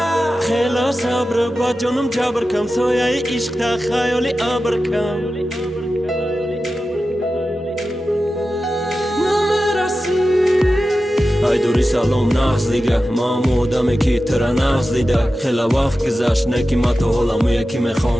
خیلی صبر با جانم جبر کم، سایه عشق تا خیالی ابر کم. ای دوری سلام نغز دیگه، ما آدمی که ترا نغز دیده. خیلی وقت گذشت نکی ما تو حالمو یکی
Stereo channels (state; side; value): normal; both; correlation 0.93